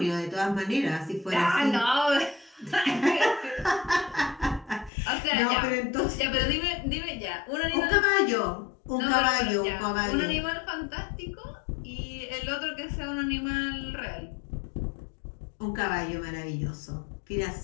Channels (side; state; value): right; drops out; at 4.9 s